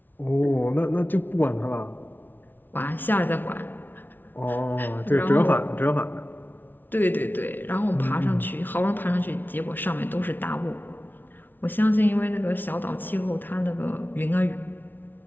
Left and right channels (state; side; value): late; right; 0.091 ms